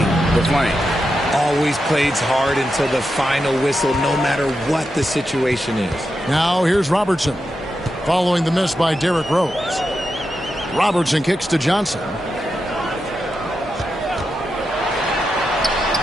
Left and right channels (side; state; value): both; normal; correlation 0.87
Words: the flame. Always plays hard until the final whistle, no matter what the situation is. Now here's Robertson. Following the miss by Derrick Rose. Robertson kicks to Johnson.